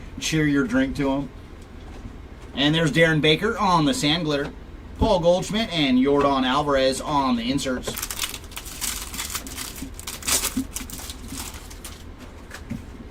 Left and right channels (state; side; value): identical; both; correlation 1.00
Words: Cheer your drink to him. And there's Darren Baker on the sand glitter, Paul Goldschmidt and Yordan Alvarez on the inserts.